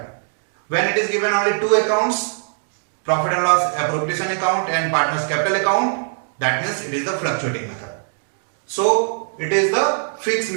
When it is given only two accounts, profit and loss appropriation account and partners capital account, that means it is the fluctuating method. So it is the fixed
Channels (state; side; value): silent; left; digital silence